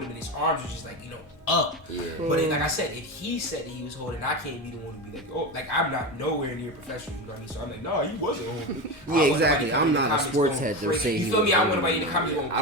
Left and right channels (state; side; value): normal; both; correlation 0.20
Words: him, and his arms were just like up. Yeah. But like I said, if he said that he was holding, I can't be the one to be like, oh, like I'm not nowhere near professional. You know what I mean? So I'm like, no, he wasn't holding. Yeah, exactly. I'm not a sports head to say you feel me? I want somebody in the comments going